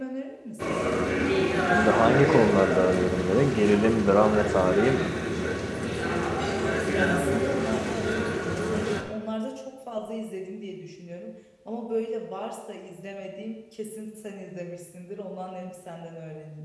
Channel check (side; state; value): both; identical; correlation 1.00